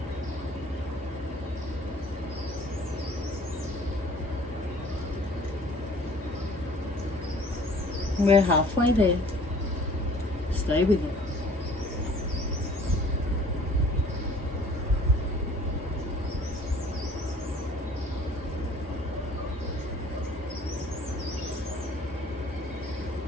We're halfway there. Stay with it.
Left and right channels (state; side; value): normal; both; correlation 0.52